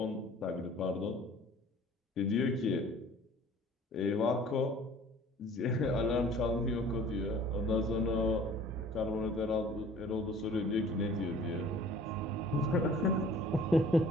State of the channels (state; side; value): normal; both; correlation 0.50